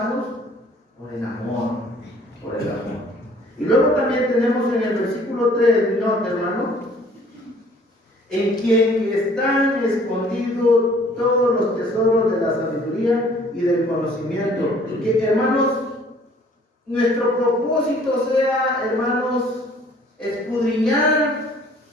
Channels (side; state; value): both; normal; correlation 0.56